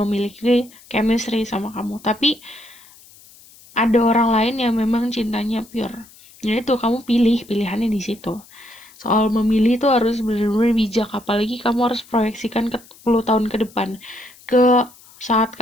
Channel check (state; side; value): noise; left; hiss, 24 dB below the sound